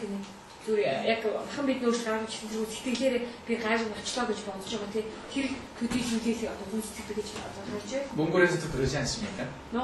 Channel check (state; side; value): identical; both; correlation 1.00